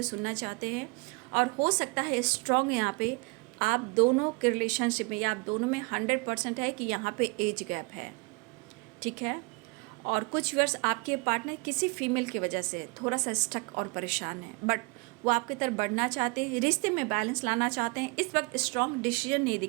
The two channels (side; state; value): left; quieter; 29.4 dB